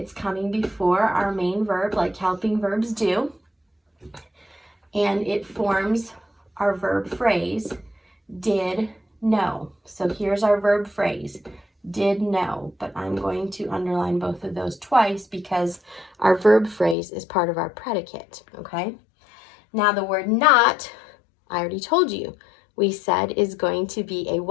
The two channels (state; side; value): drops out; right; at 16.9 s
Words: coming before our main verb like helping verbs do. And it forms our verb phrase, did know. So here's our verb phrase, did know, but I'm going to underline both of those twice because our verb phrase is part of our predicate, okay? Now the word not, I already told you, we said is going to be a